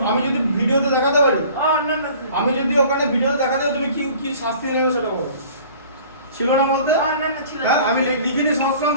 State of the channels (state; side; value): inverted; both; correlation -0.48